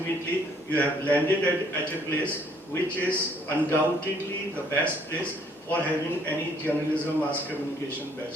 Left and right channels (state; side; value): normal; both; correlation 0.64